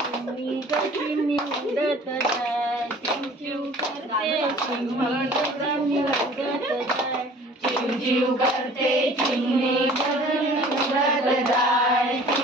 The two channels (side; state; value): both; normal; correlation 0.49